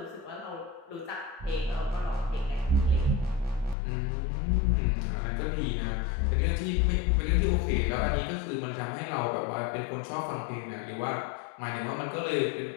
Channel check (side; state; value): right; drops out; at 3.8 s